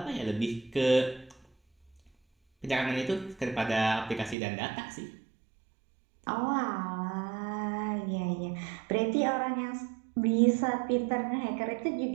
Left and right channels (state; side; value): drops out; left; at 4.4 s